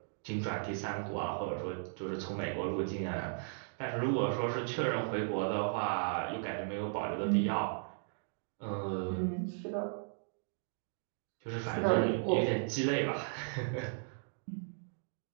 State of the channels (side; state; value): left; silent; digital silence